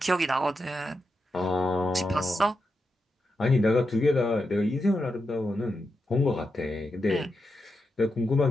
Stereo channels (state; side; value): normal; both; correlation 0.87